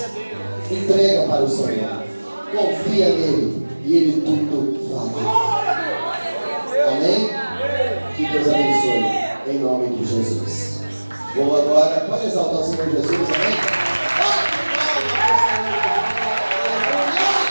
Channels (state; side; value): inverted; both; correlation -1.00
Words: Entrega para o Senhor. Confia nele e ele tudo fará. Amém? Que Deus abençoe. Em nome de Jesus. Vou agora, pode exaltar o Senhor Jesus, amém?